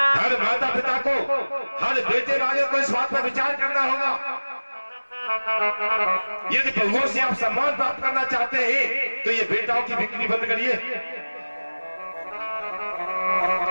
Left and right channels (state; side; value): inverted; both; correlation -1.00